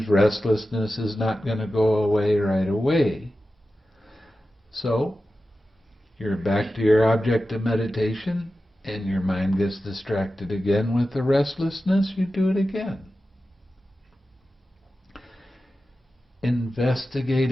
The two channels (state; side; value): normal; both; correlation 0.93